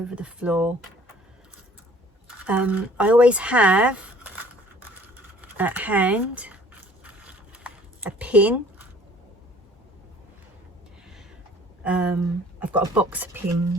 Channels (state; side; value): normal; both; correlation 0.53